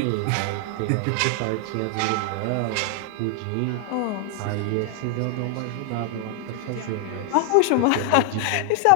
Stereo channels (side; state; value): both; different; correlation 0.00